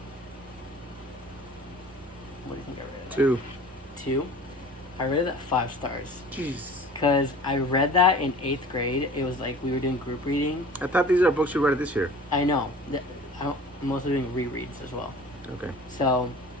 What do you think I rated it? 2. 2? I rated that 5 stars. Jeez. Because I read that in 8th grade. It was like we were doing group reading. I thought these are books you read this year. I know. I'm mostly doing rereads as well. Okay. So,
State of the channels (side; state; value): both; normal; correlation 0.43